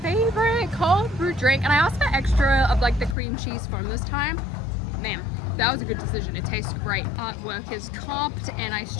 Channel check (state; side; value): drops out; right; at 3.2 s